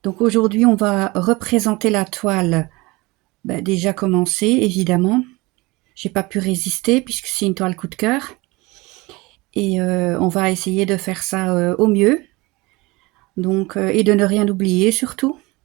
Donc, aujourd'hui, on va représenter la toile déjà commencée, évidemment. J'ai pas pu résister puisque c'est une toile coup de cœur. Et on va essayer de faire ça au mieux. Donc, et de ne rien oublier surtout,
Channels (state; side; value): quieter; left; 23.1 dB